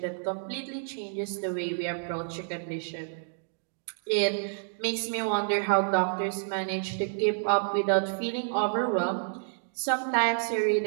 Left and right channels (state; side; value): silent; left; digital silence